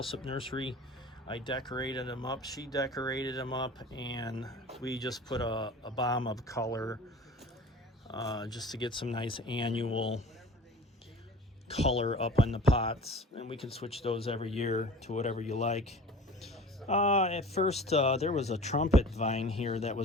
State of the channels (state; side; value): normal; both; correlation 0.41